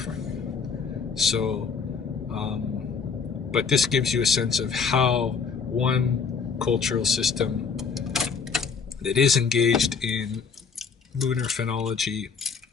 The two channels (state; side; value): quieter; right; 5.7 dB